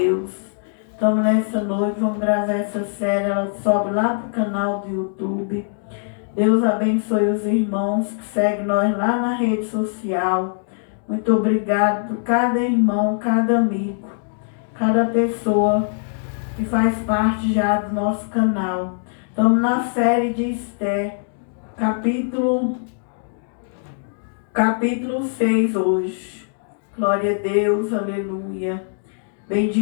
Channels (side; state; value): right; silent; digital silence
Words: Então, nessa noite, vamos gravar essa série. Ela sobe lá pro canal do YouTube. Deus abençoe os irmãos que seguem nós lá na rede social. Muito obrigado por cada irmão, cada amigo, cada pessoa que faz parte já do nosso canal. Estamos na série de Esther, capítulo 6 hoje. Glória a Deus, aleluia.